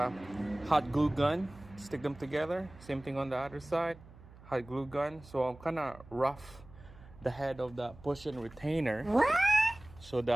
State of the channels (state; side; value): noise; right; hum, 21 dB below the sound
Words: hot glue gun. Stick them together. Same thing on the other side. Hot glue gun. So I'm kind of rough the head of the push-in retainer so